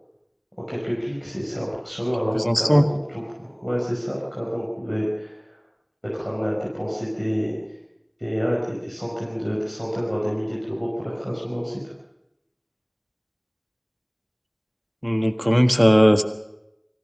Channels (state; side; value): identical; both; correlation 1.00